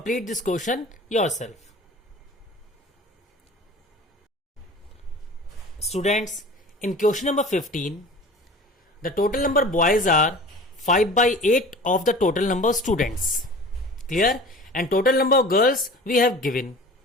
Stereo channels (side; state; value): both; normal; correlation 0.41